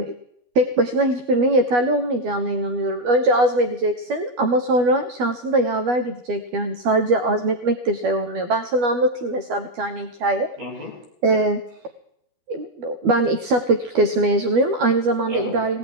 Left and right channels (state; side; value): late; left; 12 ms